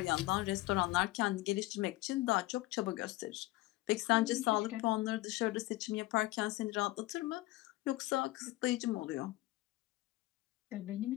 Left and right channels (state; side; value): quieter; right; 18.8 dB